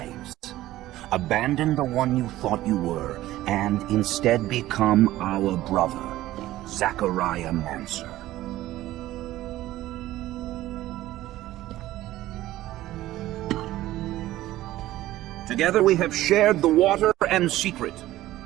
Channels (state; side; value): quieter; left; 15.4 dB